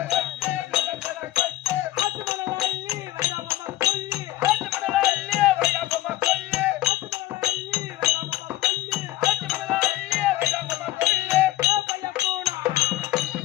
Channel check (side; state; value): right; quieter; 15.7 dB